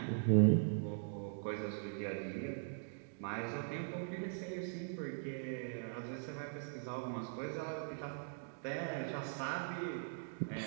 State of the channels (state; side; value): silent; left; digital silence